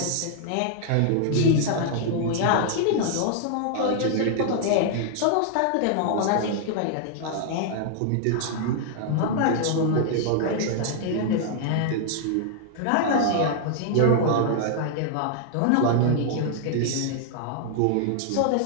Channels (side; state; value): both; different; correlation -0.01